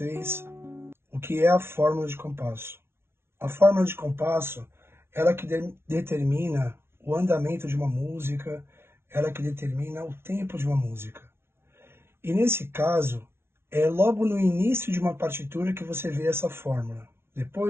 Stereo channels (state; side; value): late; left; 0.12 ms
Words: o que é a fórmula de compasso. A fórmula de compasso, ela que determina o andamento de uma música, ela que determina o tempo de uma música. E nesse caso, é logo no início de uma partitura que você vê essa fórmula.